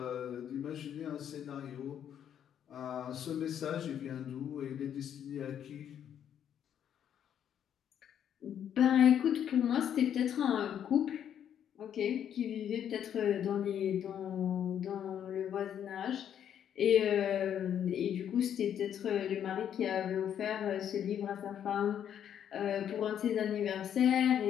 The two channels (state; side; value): quieter; right; 9.4 dB